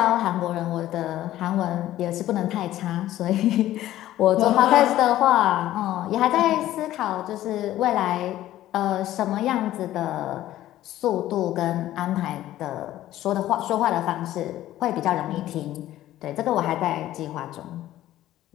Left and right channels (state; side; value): quieter; right; 14.0 dB